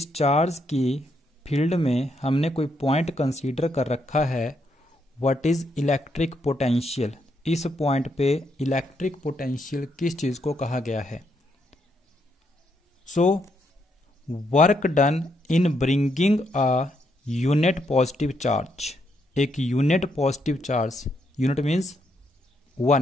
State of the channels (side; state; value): both; normal; correlation 0.77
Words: चार्ज की फील्ड में हमने कोई पॉइंट कंसीडर कर रखा है. What is electric potential? इस पॉइंट पे इलेक्ट्रिक पोटेंशियल किस चीज को कहा गया है? So work done in bringing a unit positive charge. एक unit positive charge, unit means